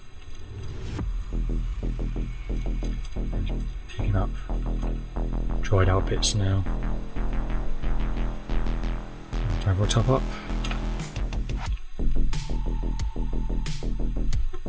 Up dried out bits now. We'll top up.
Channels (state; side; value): identical; both; correlation 1.00